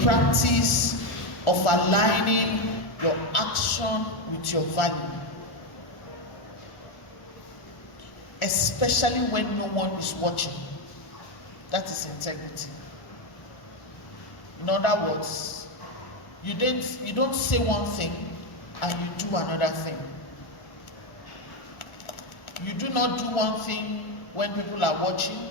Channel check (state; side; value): late; right; 1.4 ms